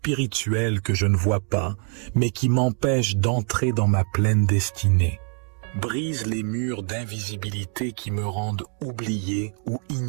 que je ne vois pas, mais qui m'empêchent d'entrer dans ma pleine destinée. Brise les murs d'invisibilité qui me rendent oublié ou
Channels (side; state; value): left; quieter; 39.9 dB